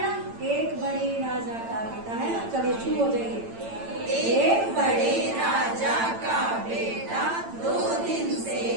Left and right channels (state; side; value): late; left; 8.9 ms